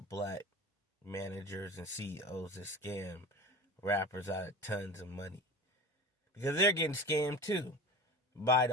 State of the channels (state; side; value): normal; both; correlation 0.33